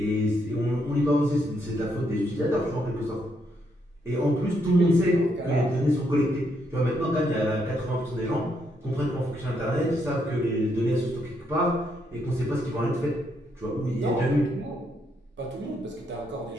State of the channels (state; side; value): normal; both; correlation 0.76